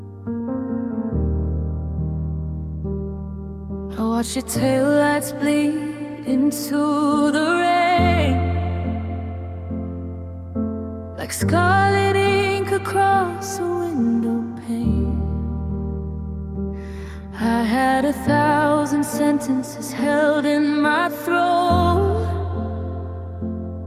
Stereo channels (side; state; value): both; identical; correlation 1.00